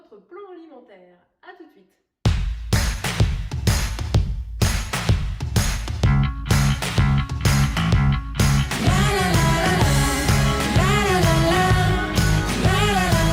plan alimentaire. A tout de suite.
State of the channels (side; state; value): both; identical; correlation 1.00